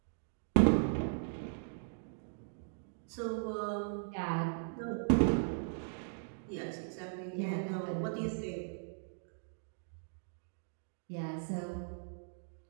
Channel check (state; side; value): silent; left; digital silence